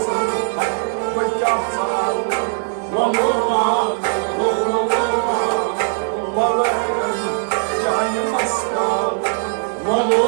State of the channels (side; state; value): left; silent; digital silence